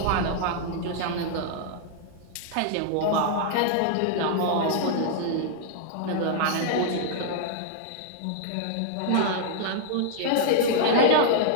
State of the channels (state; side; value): different; both; correlation -0.01